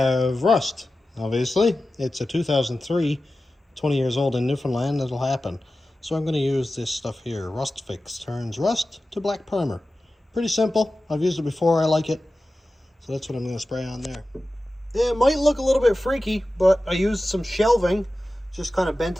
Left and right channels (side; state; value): both; normal; correlation 0.94